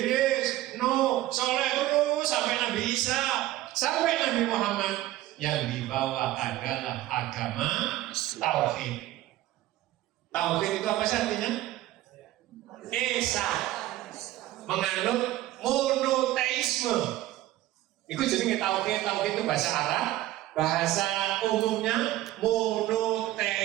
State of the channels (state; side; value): quieter; left; 15.2 dB